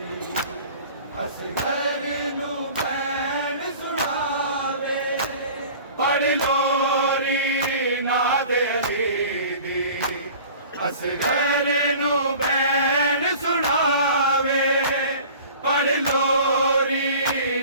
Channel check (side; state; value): both; inverted; correlation -0.43